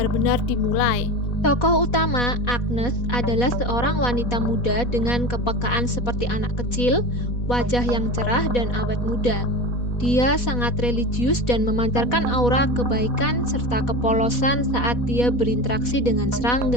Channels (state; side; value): late; right; 4.1 ms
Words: dimulai. Tokoh utama, Agnes, adalah seorang wanita muda dengan kepekaan seperti anak kecil, wajah yang cerah dan awet muda. Dia sangat religius dan memancarkan aura kebaikan serta kepolosan saat dia berinteraksi dengan